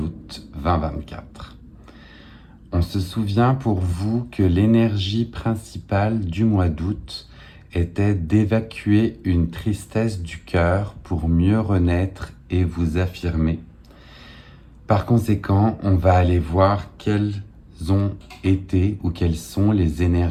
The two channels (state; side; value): identical; both; correlation 1.00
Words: 2024. On se souvient pour vous que l'énergie principale du mois d'août était d'évacuer une tristesse du cœur pour mieux renaître et vous affirmer. Par conséquent, on va aller voir quelles ont été ou quelles sont les